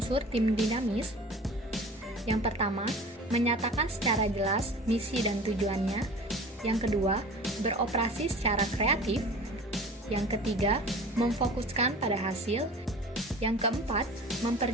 tim dinamis. Yang pertama, menyatakan secara jelas misi dan tujuannya. Yang kedua, beroperasi secara kreatif. Yang ketiga, memfokuskan pada hasil. Yang keempat,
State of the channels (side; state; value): both; normal; correlation 0.40